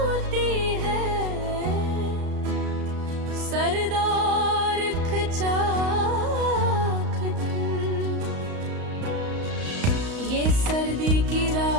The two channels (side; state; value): left; late; 35 ms